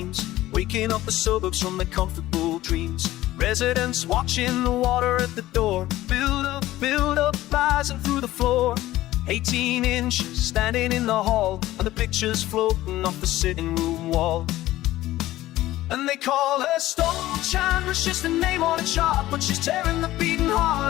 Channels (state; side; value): quieter; right; 15.7 dB